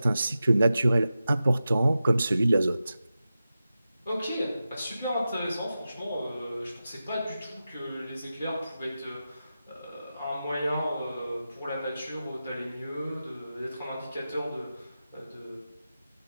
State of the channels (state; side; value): inverted; both; correlation -0.92